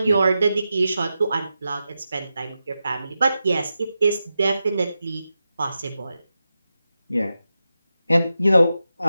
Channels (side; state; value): both; inverted; correlation -0.90